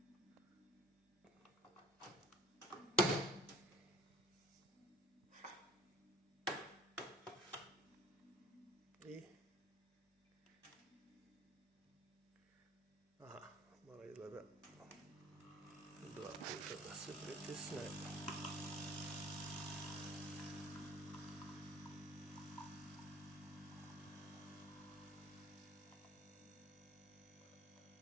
I aha, malo izgleda 2 puta da se pritisne.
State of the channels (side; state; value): both; normal; correlation 0.50